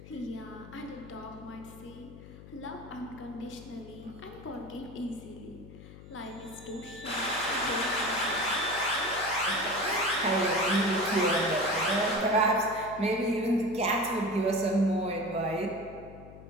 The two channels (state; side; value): noise; left; hum, 16 dB below the sound